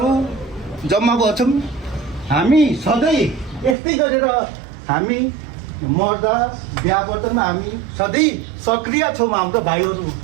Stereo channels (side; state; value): left; drops out; at 3.8 s